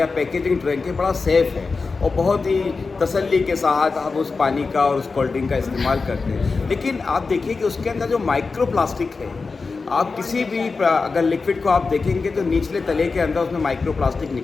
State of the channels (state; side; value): quieter; right; 4.3 dB